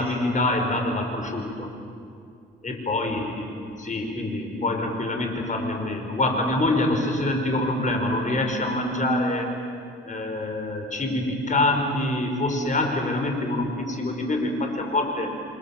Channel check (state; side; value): normal; both; correlation 0.36